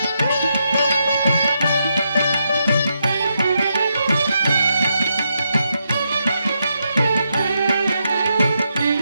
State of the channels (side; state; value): both; inverted; correlation -0.82